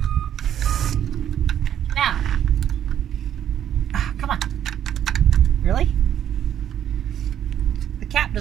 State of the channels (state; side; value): quieter; left; 10.2 dB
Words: Now, come on. Really? The cap